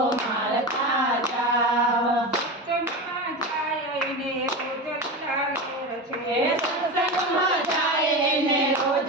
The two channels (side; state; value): both; normal; correlation 0.23